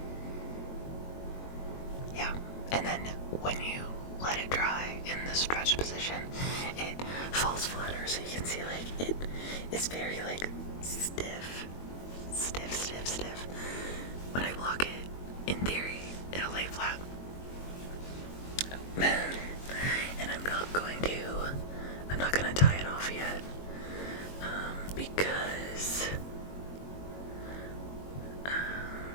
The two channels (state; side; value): late; right; 22 ms